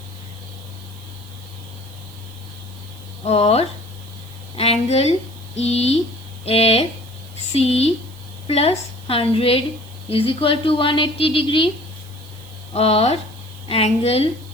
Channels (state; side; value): noise; right; hiss, 23 dB below the sound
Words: और angle EFC plus 100 is equal to 180 degree. और angle